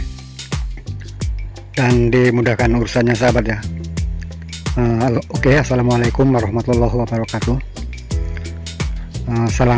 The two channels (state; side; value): identical; both; correlation 1.00